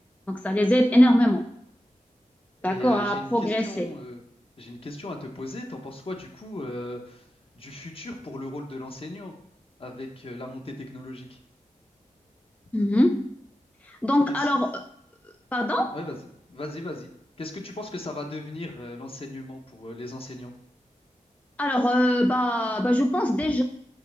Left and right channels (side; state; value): both; normal; correlation 0.91